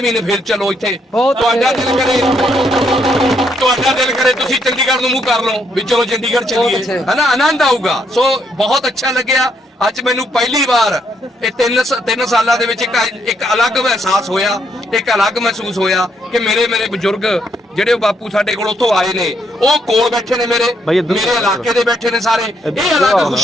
ਮਹੀਨੇ ਫੇਰ ਚਲੋ ਇੱਥੇ। ਤੁਹਾਡਾ ਦਿਲ ਕਰੇ ਤੁਸੀਂ ਚੰਡੀਗੜ੍ਹ ਨੂੰ ਮੂੰਹ ਕਰ ਲਓ ਵੀ ਚਲੋ ਚੰਡੀਗੜ੍ਹ ਚੱਲੀਏ, ਹਨਾ, ਆਨੰਦ ਆਊਗਾ। ਸੋ ਬਹੁਤ ਅੱਛਾ ਲੱਗਿਆ। ਅੱਜ ਮੈਨੂੰ ਪਹਿਲੀ ਵਾਰ ਇਹ 3 ਸਾਲਾਂ ਦੇ ਵਿੱਚ ਇੱਕ ਅਲੱਗ ਅਹਿਸਾਸ ਹੋਇਆ, ਇੱਕ ਅਲੱਗ ਮਹਿਸੂਸ ਹੋਇਆ ਕਿ ਮੇਰੇ ਬਜ਼ੁਰਗ ਜਿਹੜੇ ਬਾਪੂ ਸਾਡੇ ਕੋਲ ਉੱਥੋਂ ਆਏ ਨੇ, ਉਹ ਕੋਲ ਬੈਠੇ ਨੇ, ਮੇਰੇ ਇਲਾਕੇ ਦੇ ਬੈਠੇ ਨੇ ਸਾਰੇ। ਇਹ ਅਲੱਗ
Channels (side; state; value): both; normal; correlation 0.75